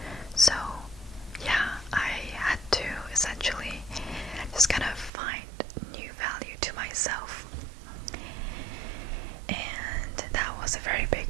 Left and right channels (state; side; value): drops out; left; at 5.1 s